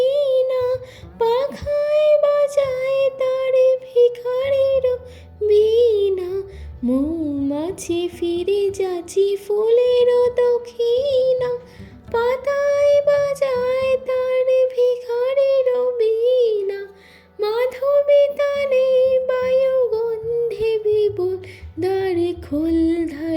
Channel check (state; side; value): identical; both; correlation 1.00